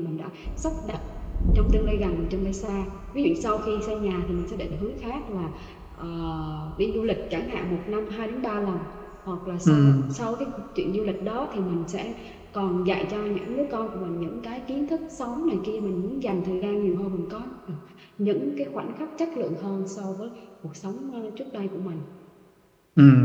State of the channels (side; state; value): both; identical; correlation 1.00